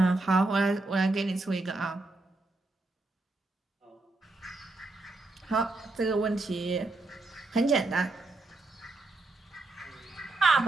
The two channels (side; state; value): left; quieter; 3.0 dB